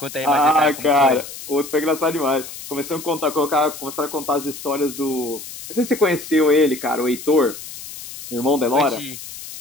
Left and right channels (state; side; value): noise; left; hiss, 12 dB below the sound